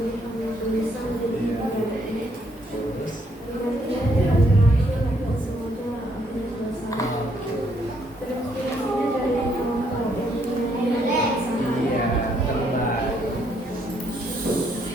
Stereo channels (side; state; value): both; normal; correlation 0.71